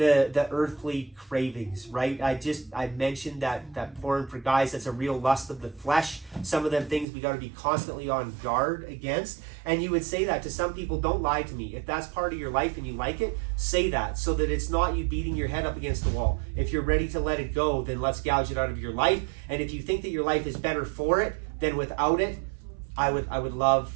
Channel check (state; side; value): drops out; left; at 7.1 s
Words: earthly cravings, right? I mentioned that porn for guys, that's a real lust of the flesh. Some of them things we got to be constantly on guard against. And you would say that to some people. Don't lie to me. If that's part of your life and you like it, say that, so that it's not you beating your head up against the wall. If you're ready to let it go, then let's gouge it out of your life. And if you think that your life is better for it than without it, I would love